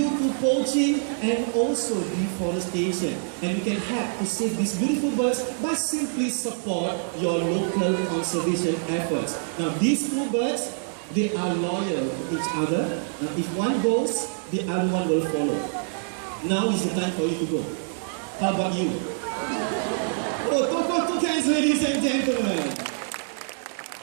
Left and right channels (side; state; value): left; silent; digital silence